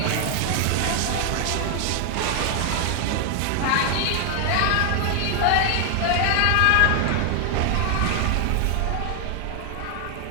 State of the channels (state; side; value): different; both; correlation 0.00